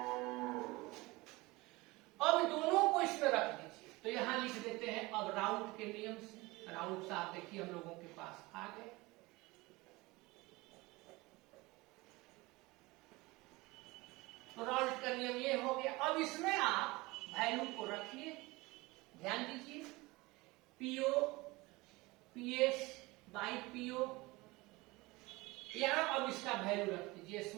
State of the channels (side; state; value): left; quieter; 22.3 dB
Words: अब दोनों को इसमें रख दीजिए, तो यहां लिख देते हैं अब राउंड के नियम से। राउंड से आप देखिए हम लोगों के पास आ गए। तो राउंड का नियम ये हो गया। अब इसमें आप वैल्यू को रखिए, ध्यान दीजिए, पीओ पीएस बाई पीओ, यहां अब इसका वैल्यू रख दीजिए,